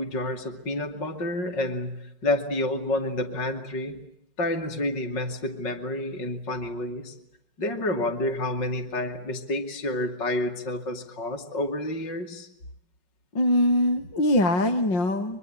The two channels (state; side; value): late; right; 5.4 ms